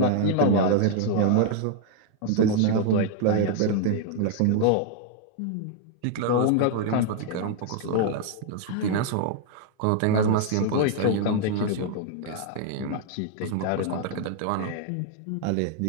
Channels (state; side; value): different; both; correlation 0.00